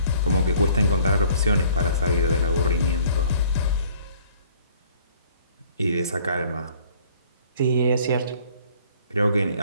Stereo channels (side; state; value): both; inverted; correlation -0.56